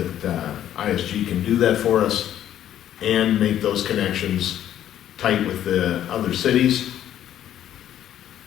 ISG can do that for us and make those connections tight with the other cities.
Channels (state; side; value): quieter; right; 11.2 dB